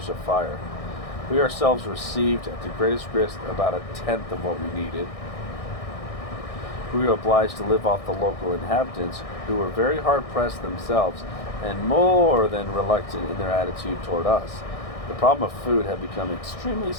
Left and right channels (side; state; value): right; late; 1.6 ms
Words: of fire. We ourselves received at the greatest risk about a tenth of what we needed. We were obliged to live off the local inhabitants, who were very hard-pressed themselves and more than reluctant in their attitude toward us. The problem of food had become extremely